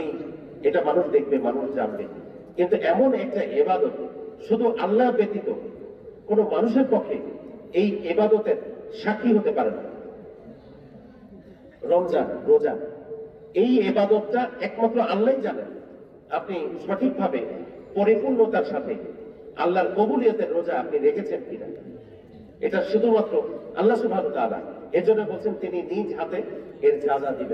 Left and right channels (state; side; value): identical; both; correlation 1.00